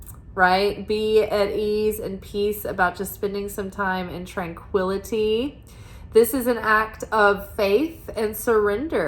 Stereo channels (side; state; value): both; identical; correlation 1.00